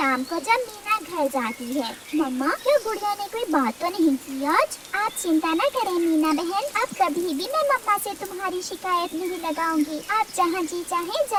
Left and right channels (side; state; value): both; identical; correlation 1.00